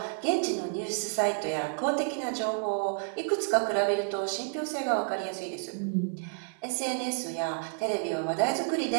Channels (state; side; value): silent; left; 58 dB below the other